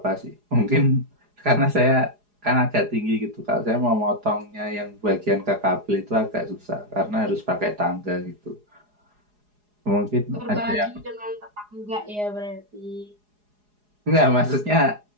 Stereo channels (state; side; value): late; left; 4.8 ms